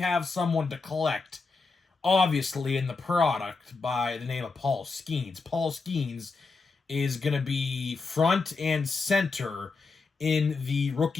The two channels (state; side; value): quieter; right; 4.2 dB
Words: someone to collect, obviously, in the product by the name of Paul Skenes. Paul Skenes is going to be front and center in the